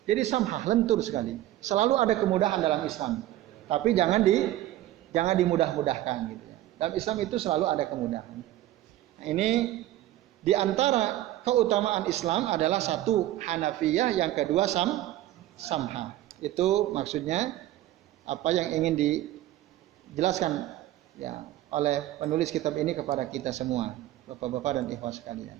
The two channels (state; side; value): quieter; left; 14.4 dB